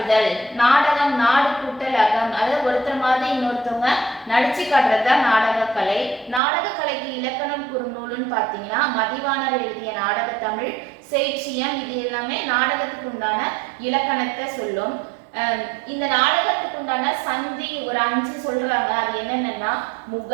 நாடகம், நாடு கூட்டல் அகம், அதாவது ஒருத்தர் மாதிரி இன்னொருத்தவங்க நடிச்சு காட்டுறதுதான் நாடகக்கலை. நாடகக்கலைக்கு இலக்கணம் குறுநூலுன்னு பாத்தீங்கன்னா, மதிவாணர் எழுதிய நாடக தமிழ், செய்சியம், இது எல்லாமே நாடகத்துக்கு உண்டான இலக்கணத்தை சொல்லும். இந்த நாடகத்துக்கு உண்டான சந்தி ஒரு 5 சொல்றாங்க. அது என்னென்னா,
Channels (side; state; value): left; drops out; at 6.4 s